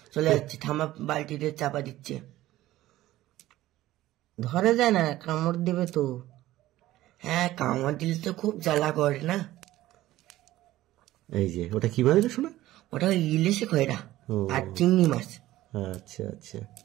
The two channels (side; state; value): left; quieter; 15.5 dB